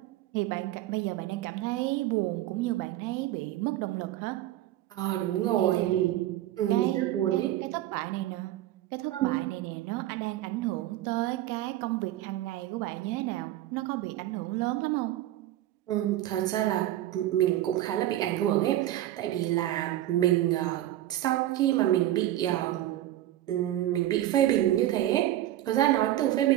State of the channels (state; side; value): quieter; left; 13.9 dB